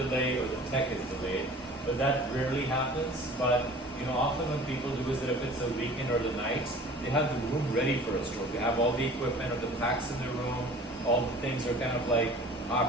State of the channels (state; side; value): normal; both; correlation 0.45